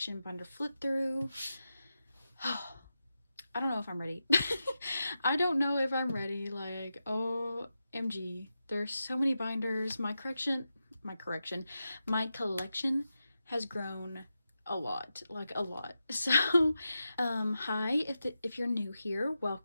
binder flip through. I don't know if I'm ready. I don't know if I'm ready. Like, OMG, there's so many binders. My collection has grown a lot, like a lot. So hi, if you're new here,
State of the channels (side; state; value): both; inverted; correlation -0.90